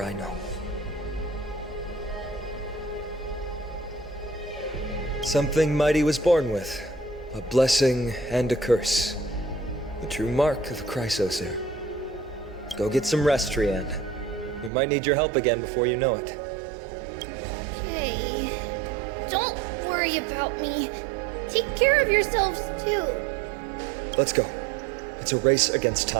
I know. Something Mighty was born with. A blessing and a curse. The true mark of a Chrysosaur. Go get some rest, Trianne. We might need your help again before you know it. Okay. Don't worry about me. Take care of yourselves, too. Let's go. It's a race against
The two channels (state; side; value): drops out; left; at 14.7 s